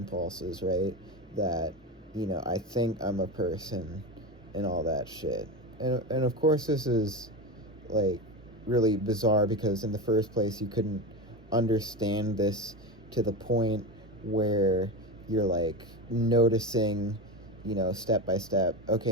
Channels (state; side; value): normal; both; correlation 0.20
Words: right? That, you know, I think I'm a person and all that shit. And of course this is like really bizarre because in the first place you couldn't understand this to the point where you're like noticing, you know, step by step,